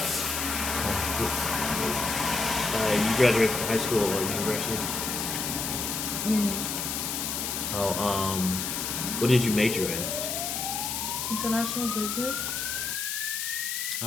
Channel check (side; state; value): left; noise; hiss, 2 dB below the sound